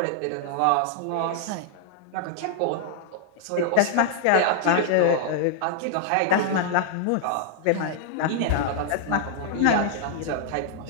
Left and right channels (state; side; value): different; both; correlation -0.01